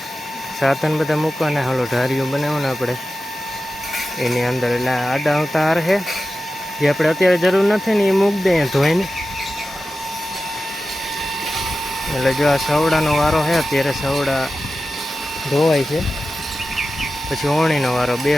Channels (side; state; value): both; normal; correlation 0.93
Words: સાધન બધા મૂકવાના. હાલો ઢારીઓ બનાવવાના આપણે એની અંદર. એટલે આડા આવતા હાર છે, જે આપણે અત્યારે જરૂર નથી ને એ મૂકી દઈએ ધોઈને. એટલે જો આ સવડાનો વારો છે, અત્યારે સવડા ધોવાય છે, પછી ઓણીનો વારો.